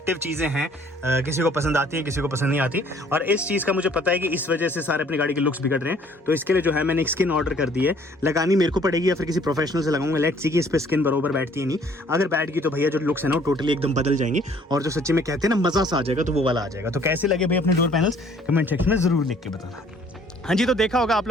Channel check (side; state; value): both; normal; correlation 0.58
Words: चीज़ें हैं, किसी को पसंद आती है, किसी को पसंद नहीं आती। और इस चीज़ का मुझे पता है कि इस वजह से सारे अपनी गाड़ी के लुक्स बिगड़ रहे हैं, तो इसके लिए जो है मैंने एक स्किन ऑर्डर कर दी है। लगानी मेरे को पड़ेगी या फिर किसी प्रोफेशनल से लगाऊंगा, लेट्स सी कि इस पर स्किन बरोबर बैठती है नहीं। अगर बैठ गई तो भैया जो लुक्स है ना वो टोटली एकदम बदल जाएंगे, और जो सच्ची में कहते हैं ना मज़ा सा आ जाएगा, तो वो वाला आ जाएगा। तो कैसे लगे भाई अपने डोर पैनल्स कमेंट सेक्शन में ज़रूर लिख के बताना। हाँ जी, तो देखा होगा आप